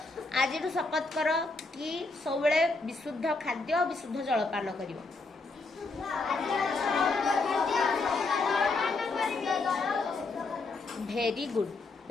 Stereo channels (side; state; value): right; quieter; 3.6 dB